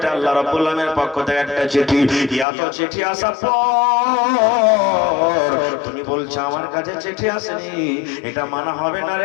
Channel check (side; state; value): right; drops out; at 2.5 s